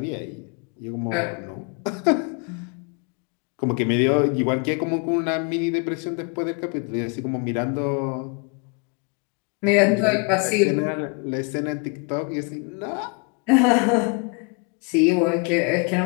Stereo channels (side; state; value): right; quieter; 34.6 dB